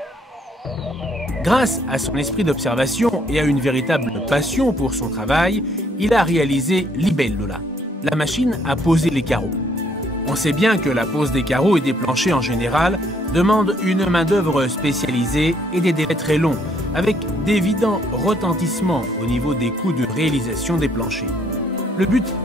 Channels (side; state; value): both; normal; correlation 0.67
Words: Grâce à son esprit d'observation et à une véritable passion pour son travail, il a réalisé Libellula, la machine à poser les carreaux. On sait bien que la pose des carreaux et des planchers en général demande une main-d'œuvre spécialisée et des délais très longs, avec d'évidents retentissements au niveau des coûts de réalisation des planchers. Le but